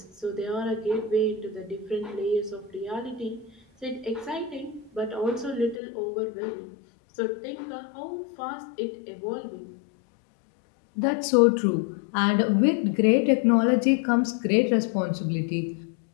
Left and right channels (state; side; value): drops out; right; at 5.8 s